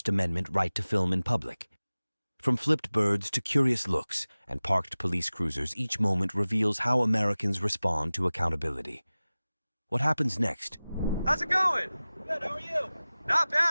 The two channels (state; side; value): inverted; both; correlation -0.98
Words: Amendment right to film in public. From flipped birds to curious looks and parked police cruisers, each moment reveals how Americans respond to accountability. What happens next? How's it going? Good, how are you? Not